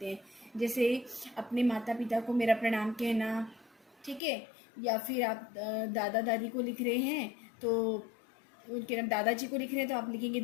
हैं। जैसे अपने माता पिता को मेरा प्रणाम कहना, ठीक है। या फिर आप दादा दादी को लिख रहे हैं तो उनके दादाजी को लिख रहे हैं तो आप लिखेंगे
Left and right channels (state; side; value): drops out; right; at 4.2 s